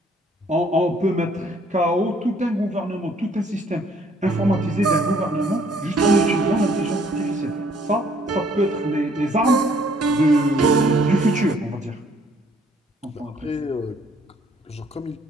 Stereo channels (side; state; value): both; normal; correlation 0.62